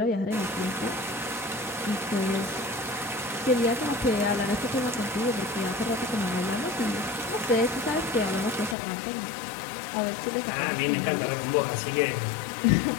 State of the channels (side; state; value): right; drops out; at 8.8 s